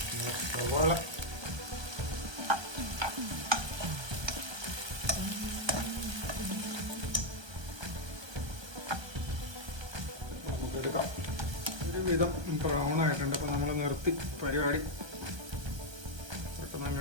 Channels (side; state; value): left; late; 1.2 ms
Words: സവാള നമുക്കെടുക്കാം. ഒരുവിധം ബ്രൗൺ ആയിട്ടുണ്ട്. അപ്പം നമ്മൾ നിർത്തി പരിപാടി. പെട്ടെന്ന്